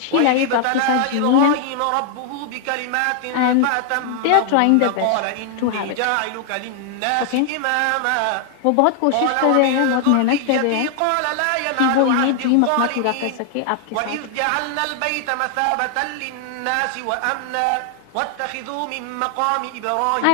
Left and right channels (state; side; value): different; both; correlation 0.00